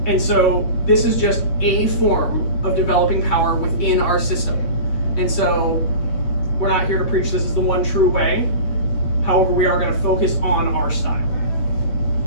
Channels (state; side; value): late; right; 8.5 ms